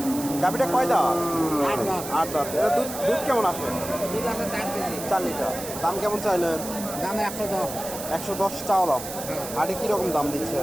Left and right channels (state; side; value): noise; right; hiss, 9 dB below the sound